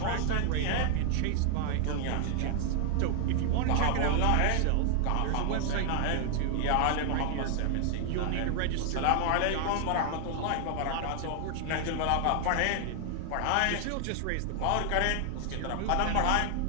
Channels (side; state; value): both; different; correlation 0.00